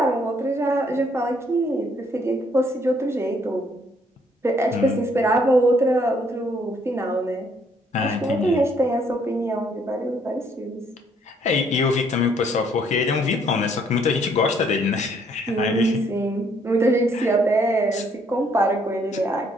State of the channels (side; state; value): both; normal; correlation 0.66